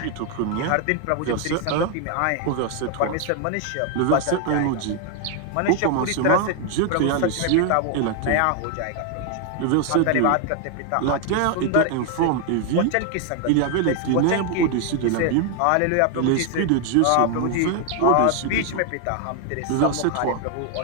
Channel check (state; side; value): different; both; correlation 0.00